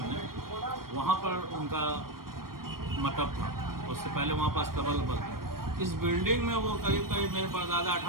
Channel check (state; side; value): late; left; 0.93 ms